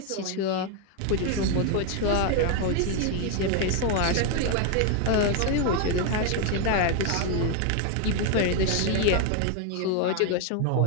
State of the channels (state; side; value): different; both; correlation 0.01